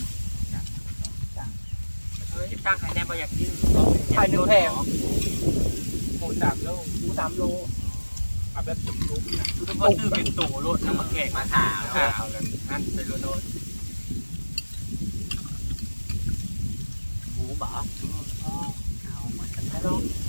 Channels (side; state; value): both; inverted; correlation -1.00